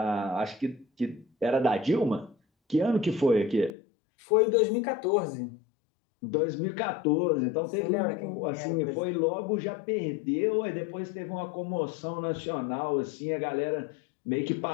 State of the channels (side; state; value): right; drops out; at 3.8 s